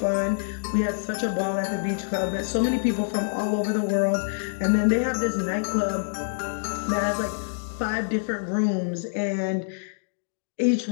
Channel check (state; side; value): silent; right; digital silence